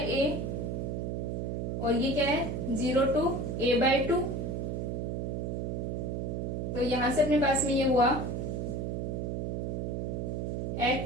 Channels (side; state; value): right; noise; hum, 1 dB below the sound